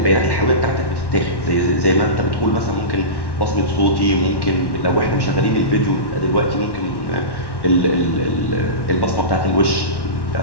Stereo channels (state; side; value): late; right; 1.1 ms